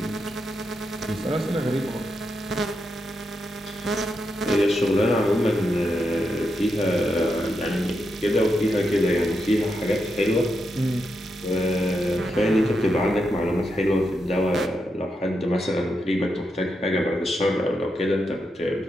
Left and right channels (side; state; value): both; normal; correlation 0.84